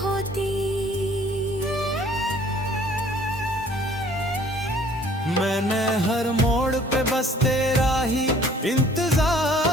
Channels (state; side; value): normal; both; correlation 0.56